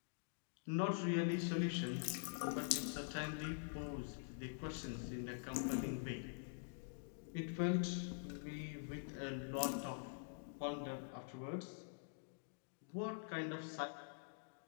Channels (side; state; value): right; silent; digital silence